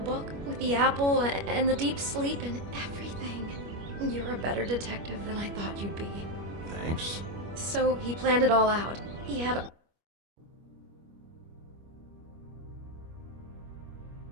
with the apple and the deep sleep and everything. You're a better detective than I thought you'd be. Thanks. So he planned it all out. He had...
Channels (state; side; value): late; left; 25 ms